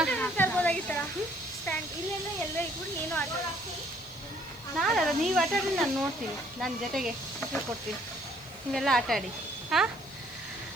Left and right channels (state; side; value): noise; left; hiss, 23 dB below the sound